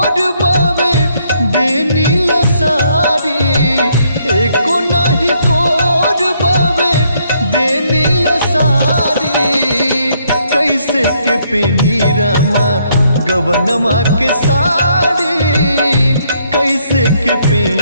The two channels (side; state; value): both; inverted; correlation -0.70